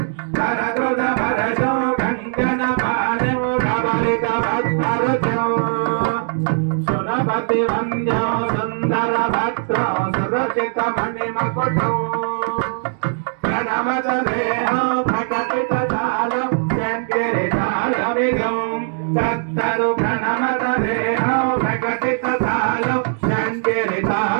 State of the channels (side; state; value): left; silent; digital silence